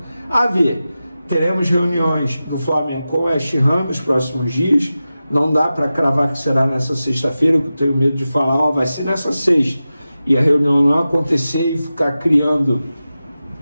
A ver, teremos reuniões do Flamengo com o West Ham nos próximos dias. Não dá para cravar que será nessa sexta-feira, que eu tenho medo de falar, vai ser nessa sexta, e a reunião não acontecer e ficar criando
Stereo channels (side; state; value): both; inverted; correlation -0.94